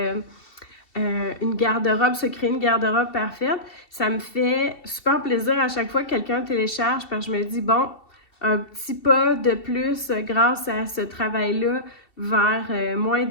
garde-robe, se créer une garde-robe parfaite. Ça me fait super plaisir à chaque fois que quelqu'un télécharge parce que je me dis, bon, un petit pas de plus grâce à ce travail-là vers moins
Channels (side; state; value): right; late; 2.7 ms